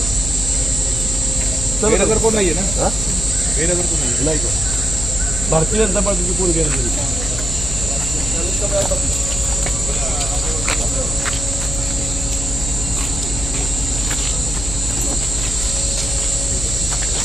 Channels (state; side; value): noise; left; hum, 6 dB below the sound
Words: कोण नाहीये ना नाही भारतीय जनता पार्टीचे कोण गेले